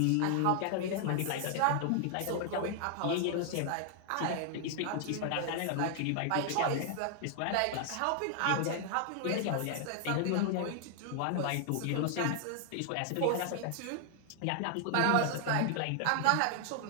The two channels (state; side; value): different; both; correlation 0.00